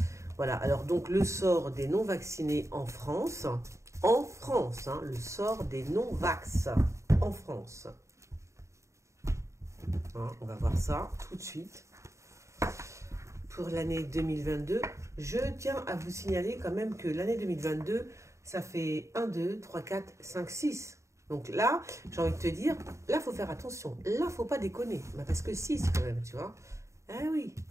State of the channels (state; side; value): late; left; 0.14 ms